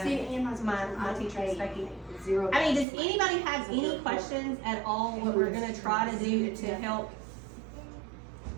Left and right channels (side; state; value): left; drops out; at 2.9 s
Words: See, and mine's my teacher and Becky. Zero. I mean, does anybody have any questions at all what we're gonna try to do to help